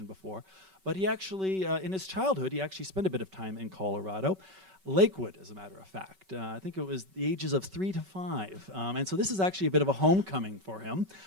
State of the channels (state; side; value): late; left; 5.3 ms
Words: before, but he actually, in his childhood, he actually spent a bit of time in Colorado. Lakewood, as a matter of fact. I think it was the ages of 3 to 5. And so this is actually a bit of a homecoming for him.